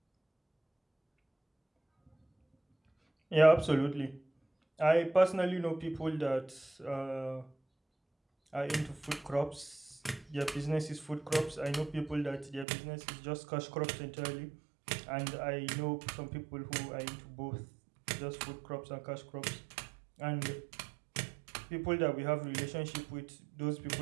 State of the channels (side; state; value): left; drops out; at 12.7 s